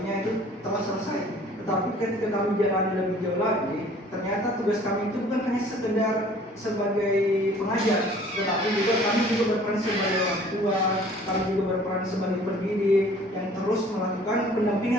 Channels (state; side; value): normal; both; correlation 0.52